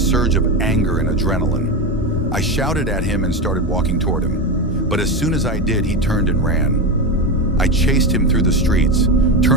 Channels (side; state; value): both; normal; correlation 0.16